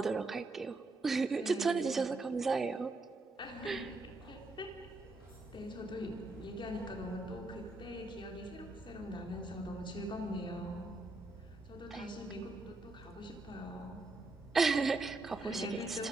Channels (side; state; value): left; quieter; 3.1 dB